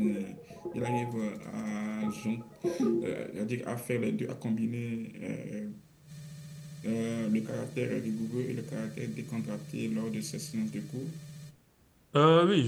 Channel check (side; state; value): both; identical; correlation 1.00